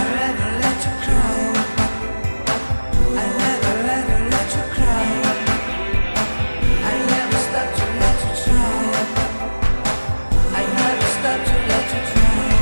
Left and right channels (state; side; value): inverted; both; correlation -1.00